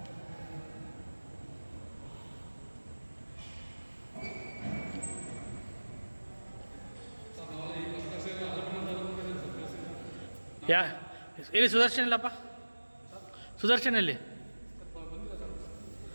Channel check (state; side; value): inverted; both; correlation -1.00